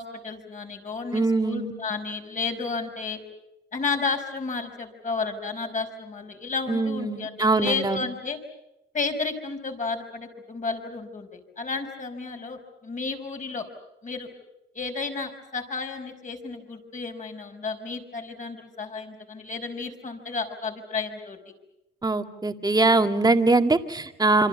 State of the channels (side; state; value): both; normal; correlation 0.46